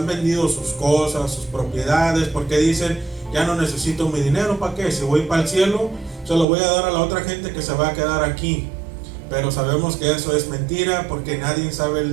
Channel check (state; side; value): drops out; left; at 6.5 s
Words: vendido sus cosas, sus propiedades, porque dicen, ya no necesito mi dinero, ¿para qué? Si voy para el cielo, se lo voy a dar a la otra gente que se va a quedar aquí. Pero sabemos que eso es mentira, porque nadie